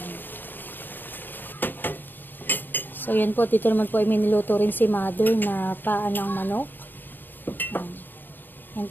So yan po, dito naman po ay miniluto rin si Mother na paa ng manok. Yan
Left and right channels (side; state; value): right; late; 0.092 ms